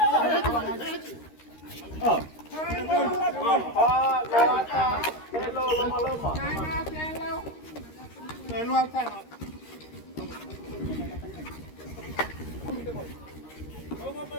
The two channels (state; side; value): late; right; 13 ms